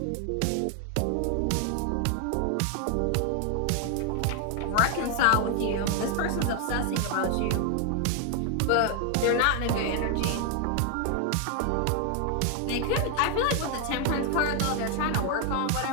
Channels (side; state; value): both; different; correlation 0.00